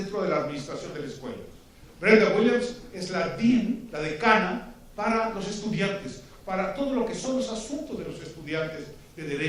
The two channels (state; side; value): identical; both; correlation 1.00